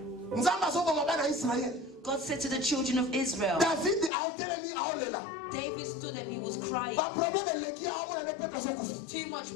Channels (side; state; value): right; drops out; at 4.1 s